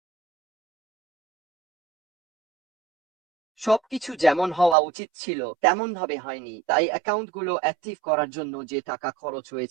সবকিছু যেমন হওয়া উচিত ছিল তেমন ভাবে হয়নি, তাই অ্যাকাউন্টগুলো অ্যাক্টিভ করার জন্য যে টাকা খরচ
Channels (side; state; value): left; drops out; at 4.8 s